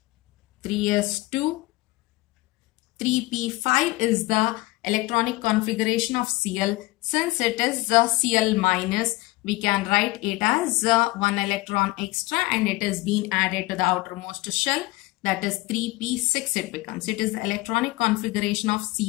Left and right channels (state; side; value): quieter; right; 21.0 dB